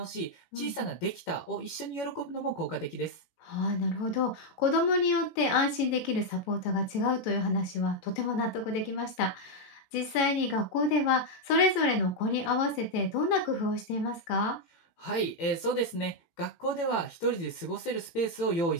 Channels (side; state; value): right; late; 18 ms